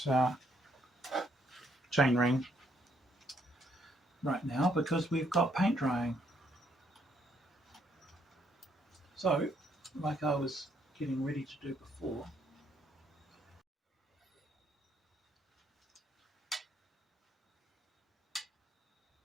chain ring right now because we've got paint drying. So, like I was getting ready to do before,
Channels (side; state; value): both; normal; correlation 0.71